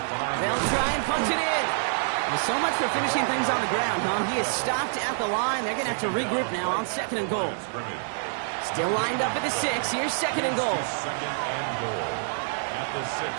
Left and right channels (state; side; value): silent; left; digital silence